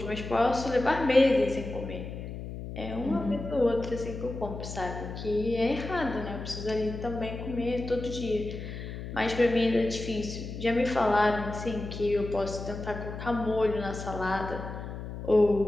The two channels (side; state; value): left; noise; hum, 8 dB below the sound